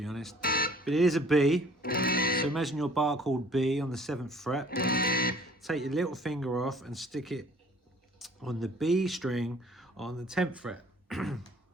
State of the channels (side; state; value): both; normal; correlation 0.54